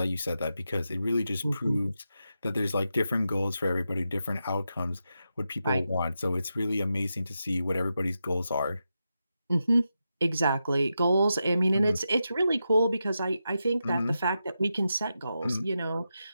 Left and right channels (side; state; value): both; inverted; correlation -0.88